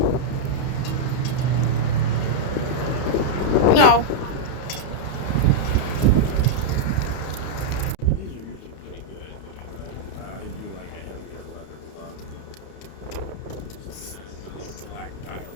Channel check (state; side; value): late; right; 31 ms